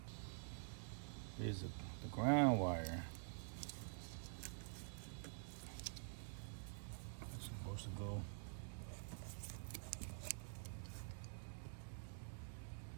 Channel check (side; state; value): left; silent; digital silence